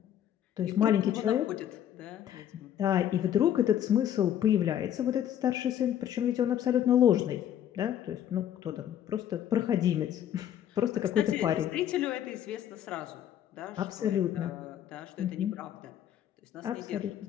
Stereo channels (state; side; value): quieter; right; 10.5 dB